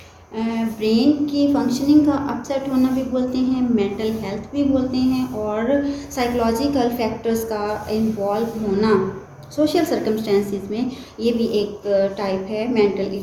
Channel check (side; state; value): both; identical; correlation 1.00